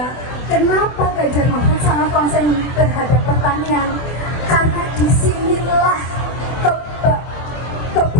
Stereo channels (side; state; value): right; late; 24 ms